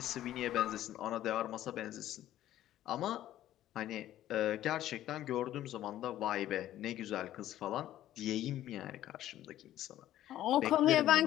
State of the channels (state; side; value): quieter; right; 13.1 dB